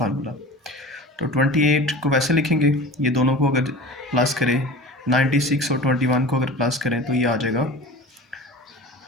तो 28 को वैसे लिखेंगे, ये दोनों को अगर प्लस करें, 96 और 21 को अगर प्लस करें तो ये आ जाएगा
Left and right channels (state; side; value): normal; both; correlation 0.36